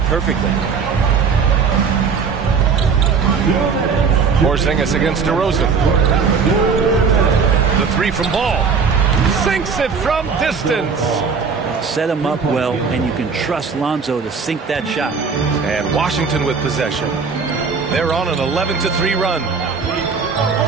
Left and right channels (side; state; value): left; quieter; 5.5 dB